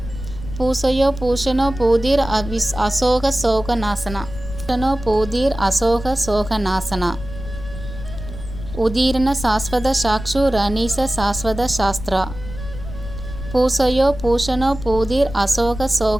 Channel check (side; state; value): left; noise; rumble, 11 dB below the sound